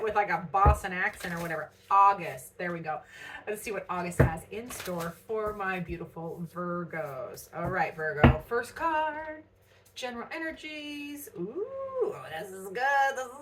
with like a Boston accent or whatever. August. There we go. Let's see what August has in store for my beautiful Virgos. All right, Virgo. First card. General energies. Ooh, this is good. This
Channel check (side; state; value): both; identical; correlation 1.00